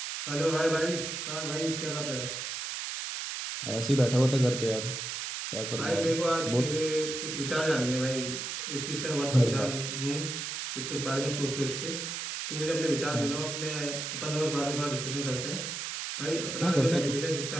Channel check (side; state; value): right; noise; hiss, 4 dB below the sound